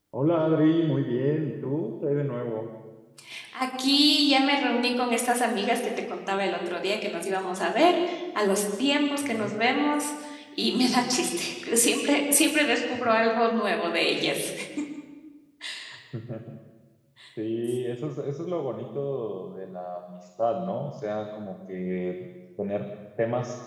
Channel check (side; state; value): both; identical; correlation 1.00